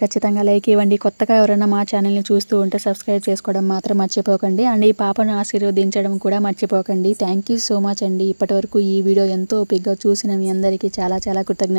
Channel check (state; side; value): inverted; both; correlation -1.00